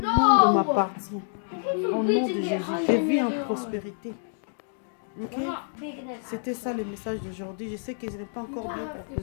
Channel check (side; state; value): right; silent; digital silence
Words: monde m'appartient. Au nom de Jésus, je vis en prospérité. Okay? C'était ça le message d'aujourd'hui. Je sais que je n'ai pas encore bien pour